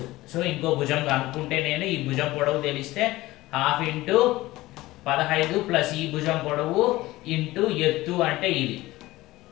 సో ఇంకో భుజం కనుక్కుంటే నేను ఈ భుజం పొడవు తెలిస్తే ½ × 15 + ఈ భుజం పొడవు × ఎత్తు అంటే ఇది.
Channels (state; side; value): quieter; right; 18.2 dB